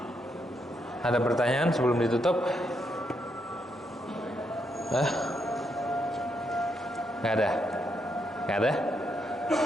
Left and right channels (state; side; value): normal; both; correlation 0.79